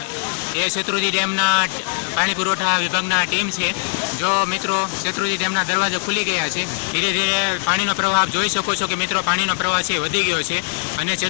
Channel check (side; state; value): right; silent; 65 dB below the other